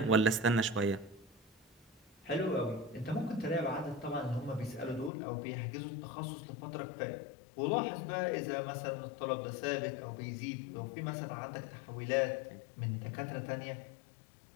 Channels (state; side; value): drops out; right; at 5.1 s